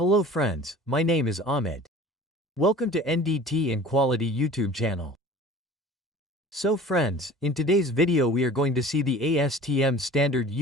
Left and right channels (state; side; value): normal; both; correlation 0.43